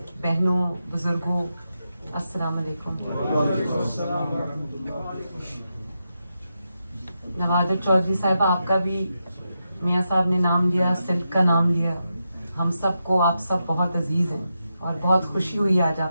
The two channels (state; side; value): inverted; both; correlation -0.87